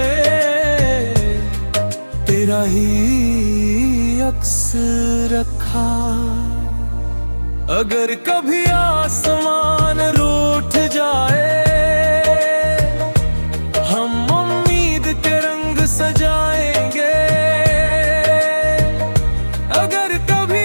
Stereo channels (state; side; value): inverted; both; correlation -1.00